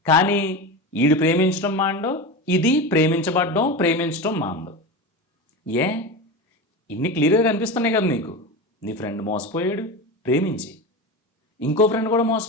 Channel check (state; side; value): normal; both; correlation 0.24